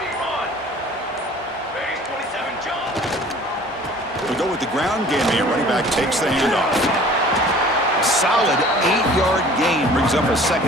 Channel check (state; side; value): normal; both; correlation 0.49